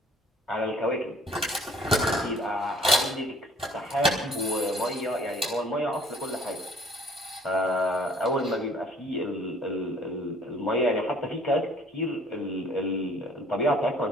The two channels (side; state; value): both; normal; correlation 0.56